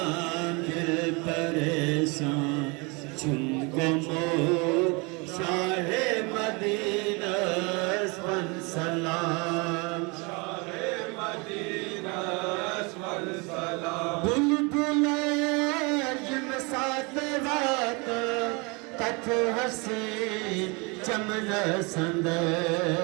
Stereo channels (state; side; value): quieter; left; 29.2 dB